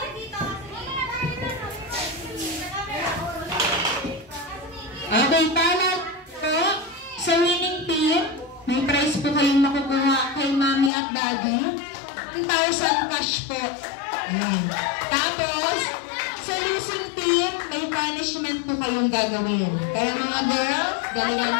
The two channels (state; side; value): drops out; right; at 10.9 s